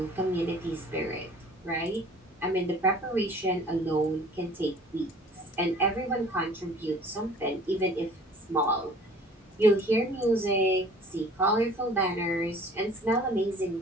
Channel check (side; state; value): both; normal; correlation 0.49